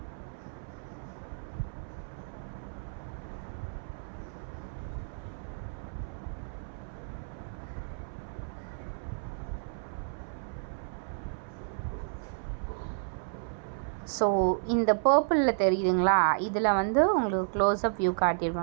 ஸோ இந்த பர்பிளில் தெரியுதுங்களா, இதில் வந்து உங்களுக்கு க்ளோஸ்அப் வியூ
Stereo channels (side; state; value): left; silent; 57 dB below the other